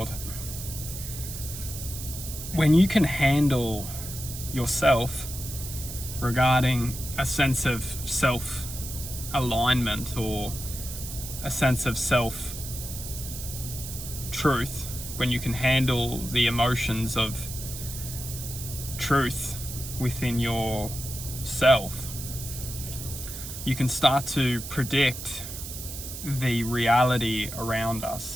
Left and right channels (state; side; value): noise; right; hiss, 9 dB below the sound